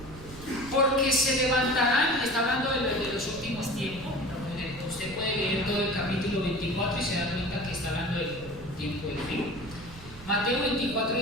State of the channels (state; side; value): noise; right; rumble, 16 dB below the sound